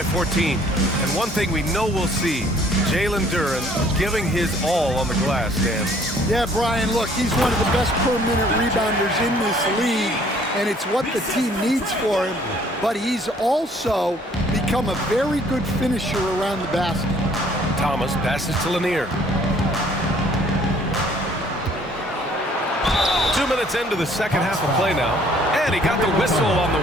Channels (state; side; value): normal; both; correlation 0.59